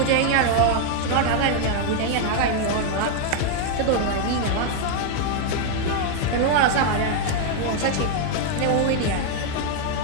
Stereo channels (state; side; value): different; both; correlation 0.00